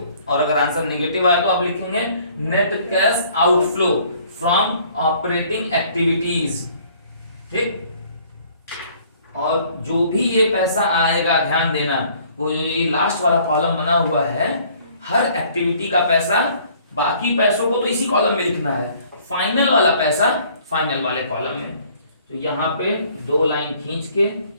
और अगर आंसर नेगेटिव आया तो आप लिखेंगे net cash outflow from operating activities. ठीक, और जो भी ये पैसा आएगा ध्यान देना, वो जो ये लास्ट वाला कॉलम बना हुआ है, हर एक्टिविटी का पैसा, बाकी पैसों को तो इसी कॉलम में लिखना है, फाइनल वाला पैसा फाइनल वाले कॉलम में। तो यहाँ पे 2 लाइन खींच के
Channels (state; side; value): inverted; both; correlation -0.58